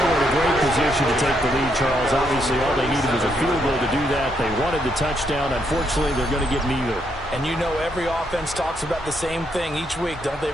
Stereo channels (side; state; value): both; normal; correlation 0.76